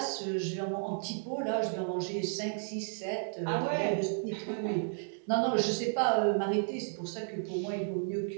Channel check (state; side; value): silent; left; digital silence